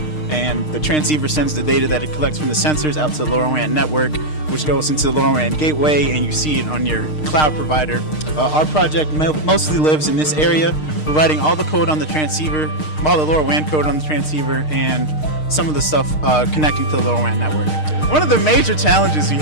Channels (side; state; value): right; late; 6.5 ms